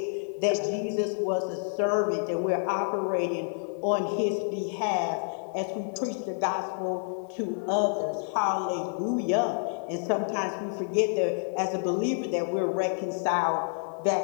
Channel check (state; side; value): silent; right; digital silence